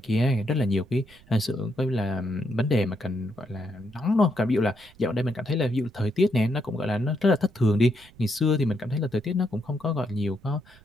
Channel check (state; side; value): noise; right; rumble, 26 dB below the sound